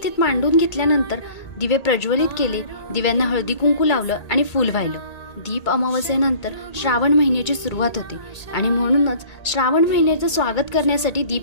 मांडून घेतल्यानंतर दिवे प्रज्वलित केले, दिव्यांना हळदी कुंकू लावलं आणि फूल वाहिलं। दीप अमावस्येनंतर श्रावण महिन्याची सुरुवात होते आणि म्हणूनच श्रावण महिन्याचं स्वागत करण्यासाठी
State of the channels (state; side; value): late; right; 2.2 ms